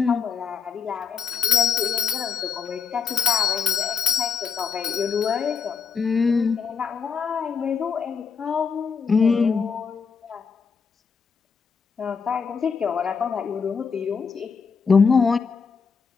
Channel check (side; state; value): right; quieter; 6.0 dB